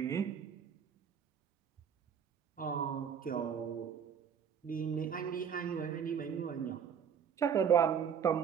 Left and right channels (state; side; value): quieter; left; 7.7 dB